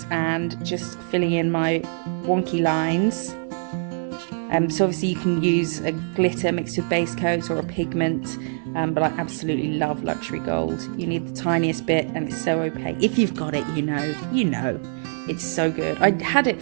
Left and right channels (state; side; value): silent; left; digital silence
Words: and just filling in my wonky lines. So obviously you can use a glitter mixed with base coat or a pigment, but I absolutely love Luxury Gold. You need the tiniest bit and it's so opaque. If you've got it, you know. It's so good. I had it